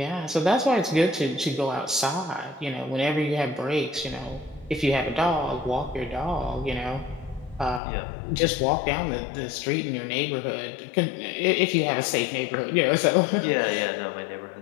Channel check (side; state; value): right; drops out; at 7.8 s